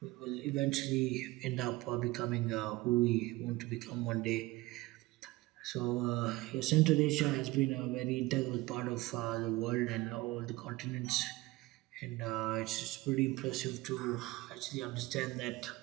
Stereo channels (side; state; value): left; quieter; 20.2 dB